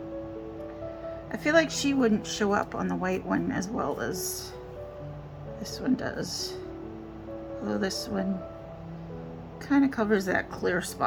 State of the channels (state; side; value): identical; both; correlation 1.00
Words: I feel like she wouldn't show up on the white one as well as this one does. Although this one kind of covers that clear